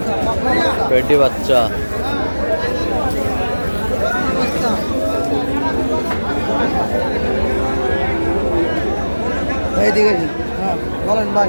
পেটি বাচ্চা। এইদিকে হ্যাঁ বলেন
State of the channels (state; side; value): inverted; both; correlation -1.00